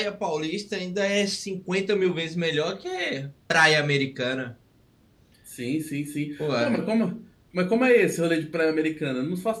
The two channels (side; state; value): both; identical; correlation 1.00